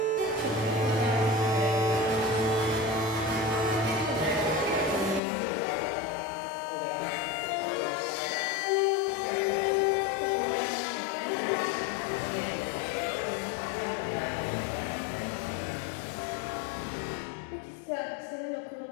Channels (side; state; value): right; drops out; at 5.2 s